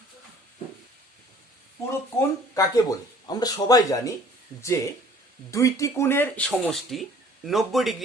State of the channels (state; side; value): normal; both; correlation 0.53